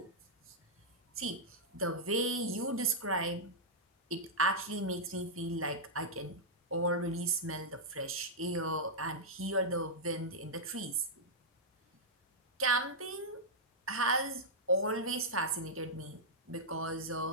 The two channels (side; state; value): both; normal; correlation -0.08